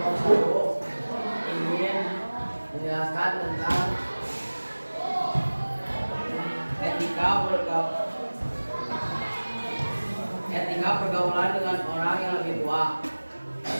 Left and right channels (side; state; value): both; inverted; correlation -1.00